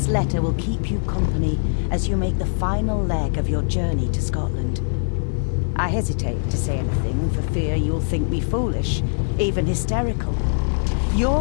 letter will keep you company as you make the final leg of your journey to Scotland. I hesitate to say anything for fear you'll think me foolish, even hysterical.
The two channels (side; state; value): right; silent; digital silence